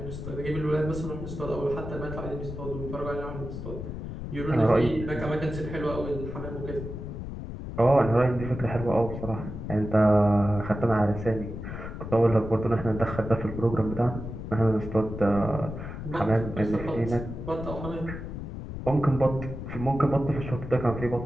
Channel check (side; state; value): left; noise; rumble, 8 dB below the sound